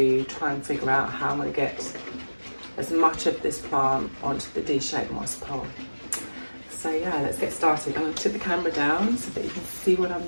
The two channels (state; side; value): inverted; both; correlation -1.00